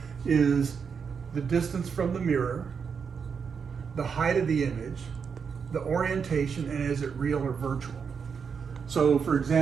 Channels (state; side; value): quieter; left; 6.3 dB